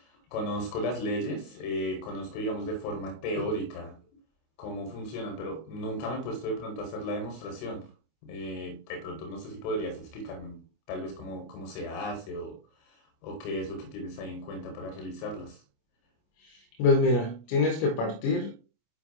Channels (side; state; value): right; late; 25 ms